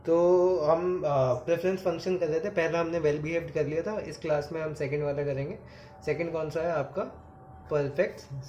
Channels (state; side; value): identical; both; correlation 1.00